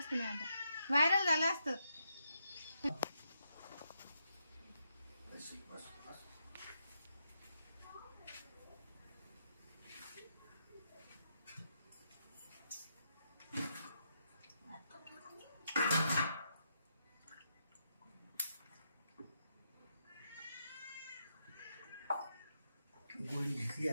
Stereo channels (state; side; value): inverted; both; correlation -0.81